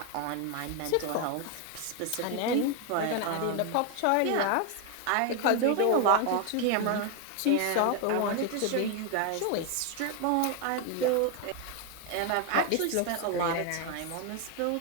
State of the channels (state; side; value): different; both; correlation 0.01